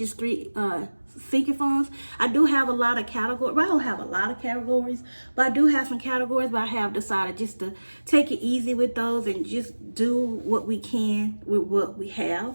3 sinking funds. I do have a lot of categories. Well, I don't have a lot of categories, but I do have some categories, but I have decided just to take it easy with those and just do what we can with what we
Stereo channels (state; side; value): inverted; both; correlation -1.00